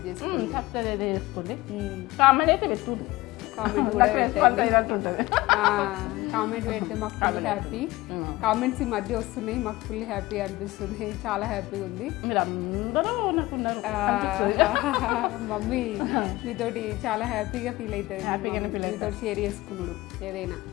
చేసుకోండి. సబ్స్క్రైబ్ చేసుకోండి, కామెంట్ అయితే పెట్టుకోండి. కామెంట్ కూడా కామెంట్ పెడితే మాకు ఫుల్ హ్యాపీ. కామెంట్స్ ఈ మధ్య వస్తున్నాయి, మాకు ఫుల్ హ్యాపీ అనిపిస్తుంది, చాలా హ్యాపీగా ఉంది. మీరు అందరూ నాకున్నారు, మమ్మీ మీతోటి చాలా హ్యాపీగా ఫీల్ అవుతుంది, మీతో షేర్ చేసుకున్నాడు ఏదైనా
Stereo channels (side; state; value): right; quieter; 19.5 dB